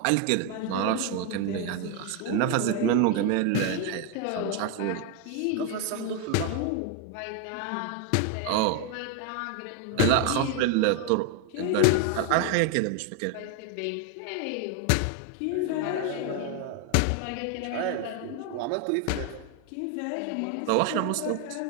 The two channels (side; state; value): both; different; correlation 0.01